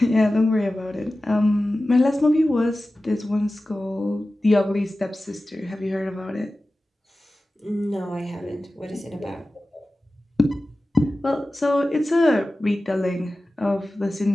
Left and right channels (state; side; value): normal; both; correlation 0.95